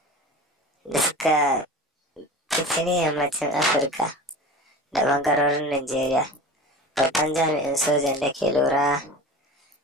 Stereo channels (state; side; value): normal; both; correlation 0.35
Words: fitini yammacin Afirka da ɓangarorin Najeriya. Babban jami'in sojan da ke lura